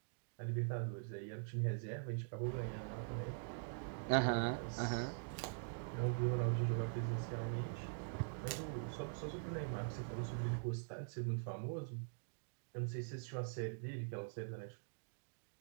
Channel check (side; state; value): left; silent; digital silence